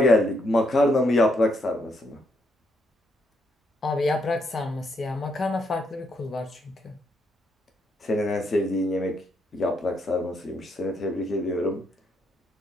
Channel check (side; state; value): both; normal; correlation 0.76